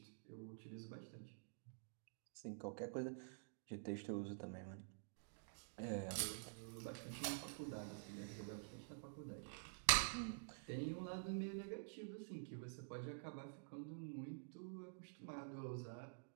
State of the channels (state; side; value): silent; left; digital silence